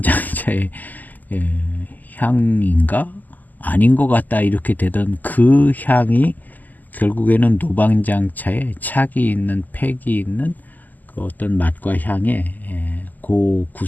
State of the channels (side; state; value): right; late; 0.083 ms